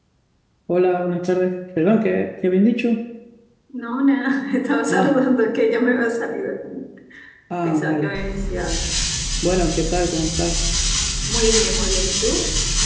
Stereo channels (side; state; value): both; identical; correlation 1.00